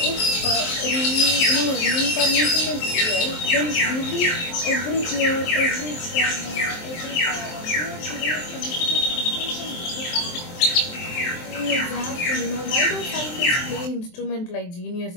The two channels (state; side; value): late; right; 23 ms